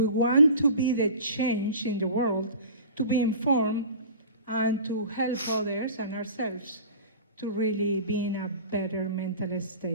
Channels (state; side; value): inverted; both; correlation -0.39